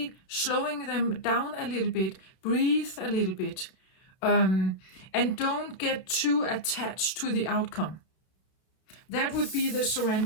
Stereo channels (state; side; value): late; right; 32 ms